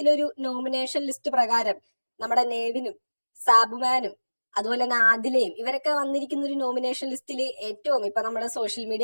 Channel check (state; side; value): inverted; both; correlation -1.00